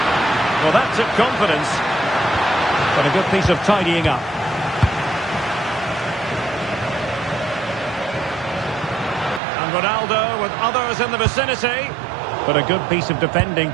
Well, that took confidence, but a good piece of tidying up. And Ronaldo with others in the vicinity, but a good piece of defending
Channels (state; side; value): drops out; left; at 9.4 s